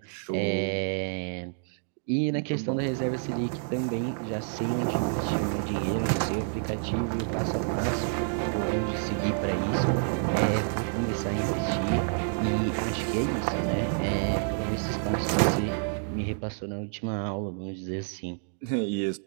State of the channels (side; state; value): left; silent; digital silence